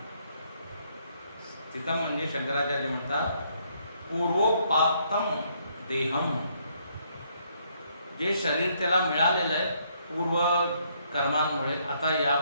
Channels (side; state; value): both; inverted; correlation -0.70